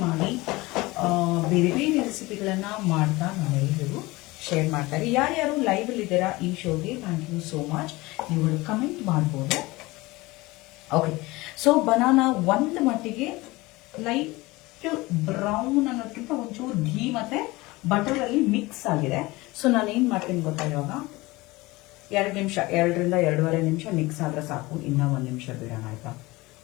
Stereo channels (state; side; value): quieter; right; 21.4 dB